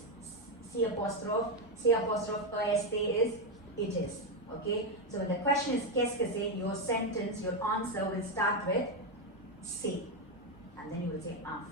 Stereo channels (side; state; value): both; normal; correlation 0.07